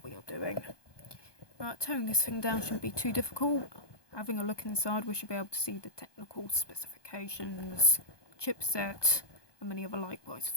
we are doing. Right, tearing this thing down shouldn't be too difficult. Having a look inside, we should be able to see the technical specifications, chipset, and many other likewise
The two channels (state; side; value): late; right; 1.2 ms